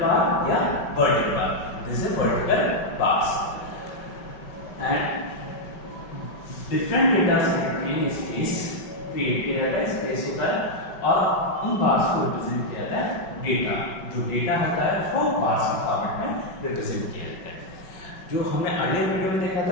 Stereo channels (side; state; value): right; late; 5.3 ms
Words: bar या vertical bar. This is vertical bars. And different data set में space create किया जाता है, space होता है और उन bars को represent किया जाता है data. जो data होता है उसको bars के फॉर्मेट में represent किया जाता है. जो हमने अगले वीडियो में देखा